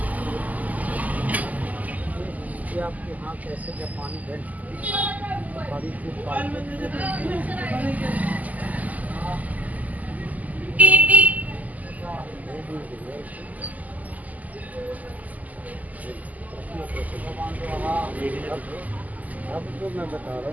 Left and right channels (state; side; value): late; left; 0.078 ms